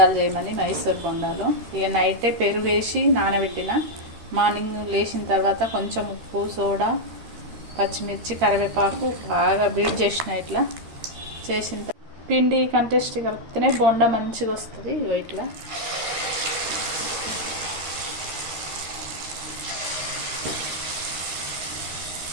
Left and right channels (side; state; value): left; late; 13 ms